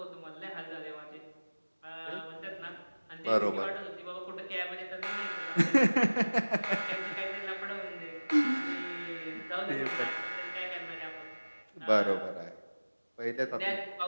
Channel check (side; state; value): both; inverted; correlation -1.00